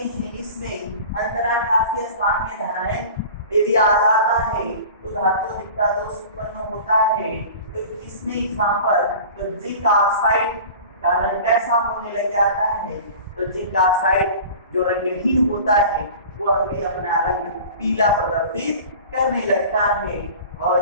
इसमें अंतराकाशीय स्थान में धनायन यदि आ जाता है तो धातु अधिकता दोष उत्पन्न होता है। तो इसमें एग्जांपल तो जिंक ऑक्साइड का रंग कैसा होने लग जाता है? तो जिंक ऑक्साइड जो रंगहीन होता है वह भी अपना रंग पीला प्रदर्शित करने लगता है।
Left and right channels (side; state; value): both; inverted; correlation -0.39